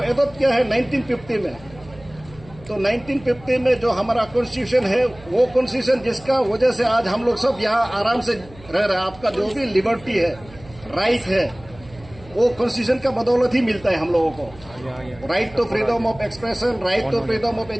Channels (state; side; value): noise; right; hum, 21 dB below the sound